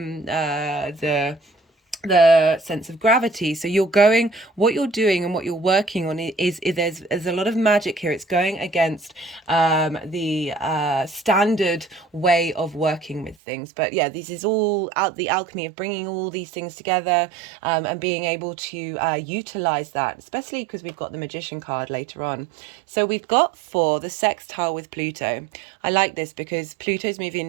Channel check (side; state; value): left; drops out; at 13.4 s